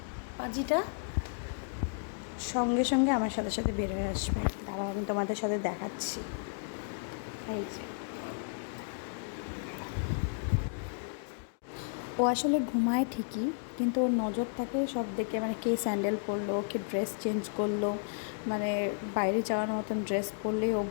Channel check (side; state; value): right; silent; digital silence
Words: পাজিটা সঙ্গে সঙ্গে আমার সাথে সাথে বের হয়ে আসবে। তারপর আমি তোমাদের সাথে দেখাচ্ছি। এই যে ও আসলে ঘুমায় ঠিকই, কিন্তু ওর নজর থাকে সব দিকে, মানে কে স্যান্ডেল পরলো, কে ড্রেস চেঞ্জ করলো। মানে বাইরে যাওয়ার মতন ড্রেস পরলেই ও